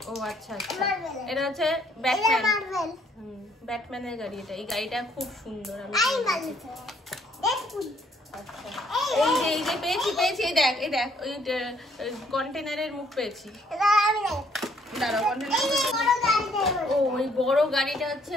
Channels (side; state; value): both; normal; correlation 0.65